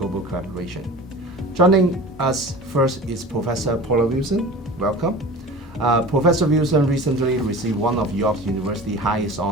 collaboration. Joining us first is Professor Paula Wilson. Welcome. Professor Wilson recently received one of York University's highest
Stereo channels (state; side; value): normal; both; correlation 0.37